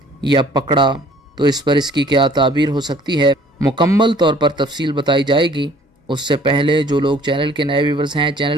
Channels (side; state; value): both; normal; correlation 0.55